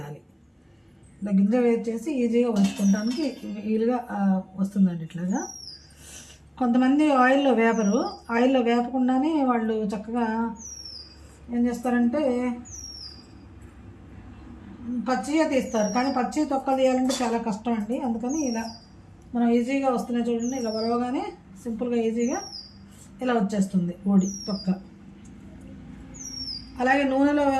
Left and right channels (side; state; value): both; identical; correlation 1.00